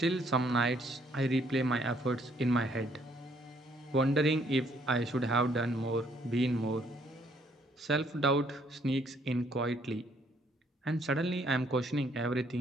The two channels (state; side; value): normal; both; correlation 0.67